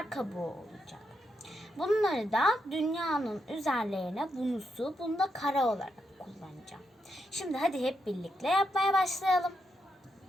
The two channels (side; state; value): both; normal; correlation 0.82